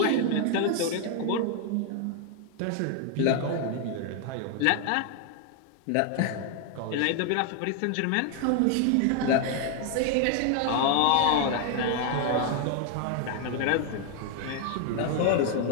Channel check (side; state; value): both; different; correlation 0.00